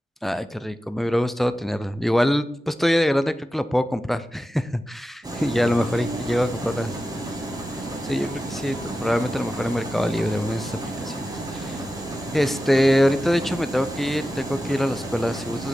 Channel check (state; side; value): normal; both; correlation 0.92